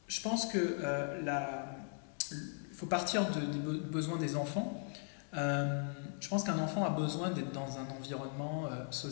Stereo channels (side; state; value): right; silent; 52 dB below the other